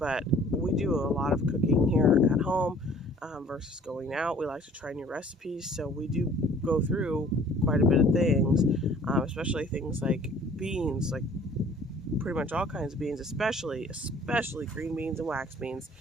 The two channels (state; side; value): normal; both; correlation 0.53